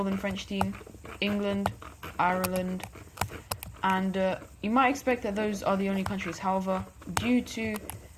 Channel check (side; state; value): both; identical; correlation 1.00